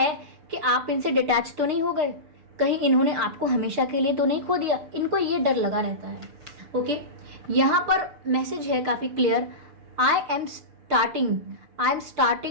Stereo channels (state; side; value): late; left; 6.8 ms